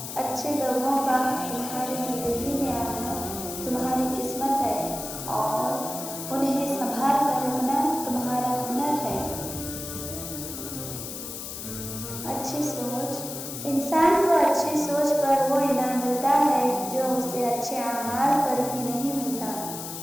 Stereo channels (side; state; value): left; noise; hiss, 8 dB below the sound